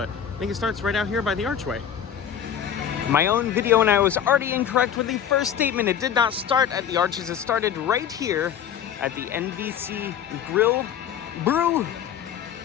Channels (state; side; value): quieter; right; 9.1 dB